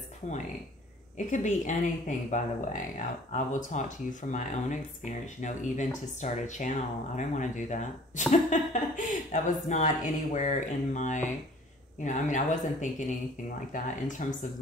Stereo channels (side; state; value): both; normal; correlation 0.52